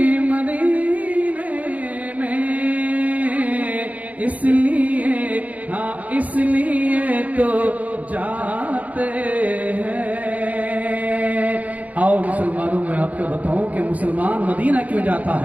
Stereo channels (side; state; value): left; late; 0.074 ms